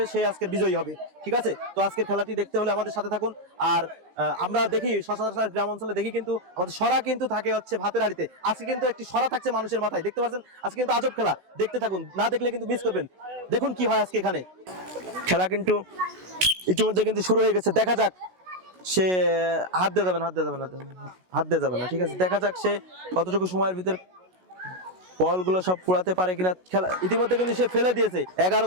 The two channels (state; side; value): late; left; 16 ms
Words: সে আজকের বিজয়ী হবে। ঠিক আছে, তো আজকের খেলাটি দেখতে হলে আমাদের সাথে থাকুন। আর আমরা দেখি সচরাচর গ্রাম অঞ্চলে দেখি কিন্তু আমাদের সরা কিন্তু থাকে হচ্ছে ভাতের হাড়িতে, আজকে কিন্তু একটি সরা থাকছে মানুষের মাথায়। দেখতে পাচ্ছেন আজকে কিন্তু আজব খেলা, দেখতে থাকুন, না দেখলে কিন্তু মিস করবেন। দেখুন কি হয় আজকে এখানে। খেলা কিন্তু ইতিমধ্যে কিন্তু শুরু হয়ে গেছে, দেখা যাক সে হাত দিয়ে যাবে না। ঠিক আছে, দেখা যাক সে কতটুকু সময়ের ভিতর বলগুলো সব কুড়াতে পারে কিনা। খেলা ইতিমধ্যে কিন্তু সে ফেলে দিয়েছে। 11